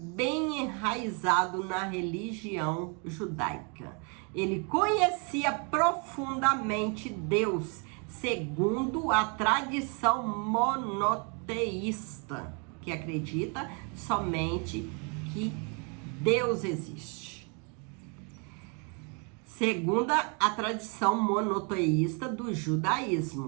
enraizado na religião judaica. Ele conhecia profundamente Deus, segundo a tradição monoteísta, que acredita somente que Deus existe. Segundo a tradição monoteísta do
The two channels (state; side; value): quieter; left; 35.7 dB